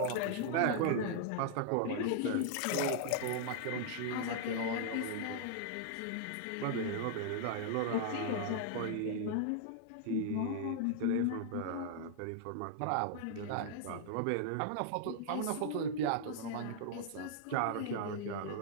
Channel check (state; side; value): different; both; correlation -0.01